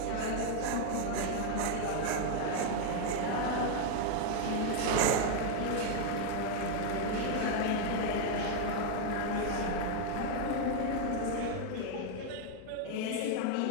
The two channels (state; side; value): different; both; correlation 0.00